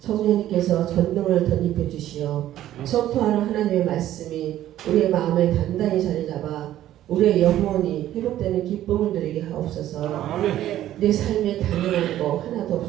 전능을 덧입혀 주시어 선포하는 하나님의 말씀이 우리의 마음에 단단히 자리 잡아 우리의 영혼이 회복되는 기쁨을 누리게 하옵소서. 내 삶에 당연한 거 하나도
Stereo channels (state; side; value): quieter; left; 12.9 dB